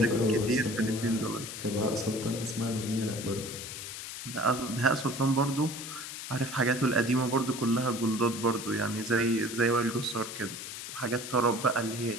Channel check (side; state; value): left; noise; hiss, 8 dB below the sound